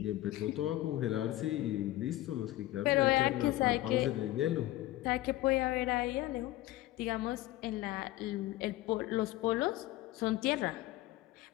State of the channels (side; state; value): right; quieter; 16.3 dB